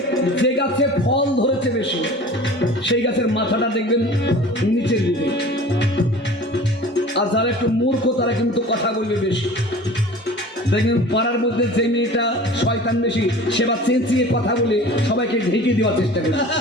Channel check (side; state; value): both; normal; correlation 0.41